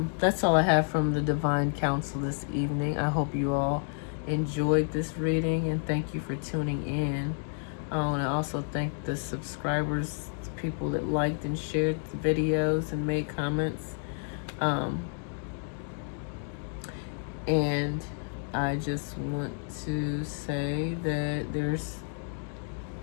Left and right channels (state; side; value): silent; right; 58 dB below the other